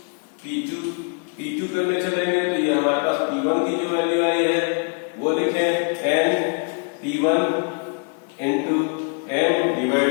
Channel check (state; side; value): quieter; right; 39.6 dB